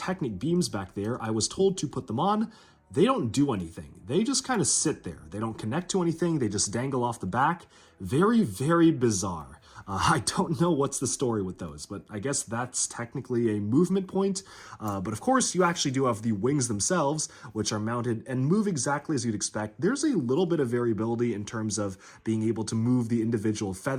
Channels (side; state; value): both; identical; correlation 1.00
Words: beams back there. I was told to put them on. They don't do anything. They just kind of sit there. They don't connect to anything. They just dangle off the back. Very bizarre. I don't know what's the story with those, but I guess that's technically a movement point. But of course, you actually do have the wings themselves, which are mounted and move exactly as you'd expect. There's a little bit of variability in terms of being able to move the individual